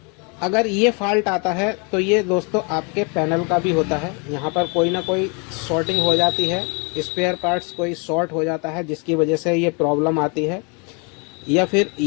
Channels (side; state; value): right; quieter; 33.8 dB